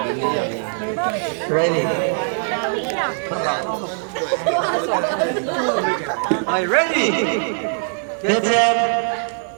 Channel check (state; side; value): silent; left; 65 dB below the other